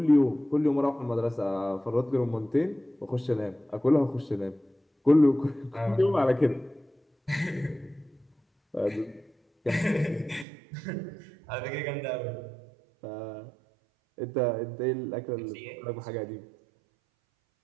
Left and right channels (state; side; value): drops out; left; at 10.5 s